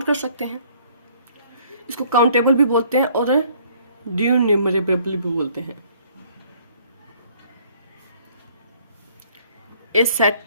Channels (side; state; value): both; inverted; correlation -0.60